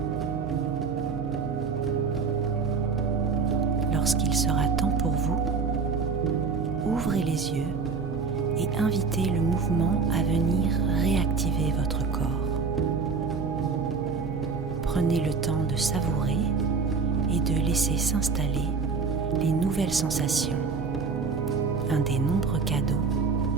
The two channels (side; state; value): left; quieter; 4.9 dB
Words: Lorsqu'il sera temps pour vous, ouvrez les yeux et invitez le mouvement à venir réactiver votre corps. Prenez le temps de savourer et de laisser s'installer les nouvelles sensations, un des nombreux cadeaux